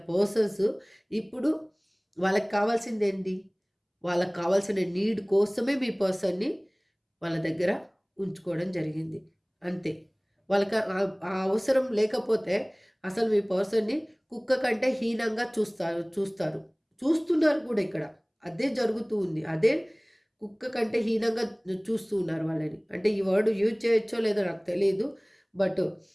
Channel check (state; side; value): identical; both; correlation 1.00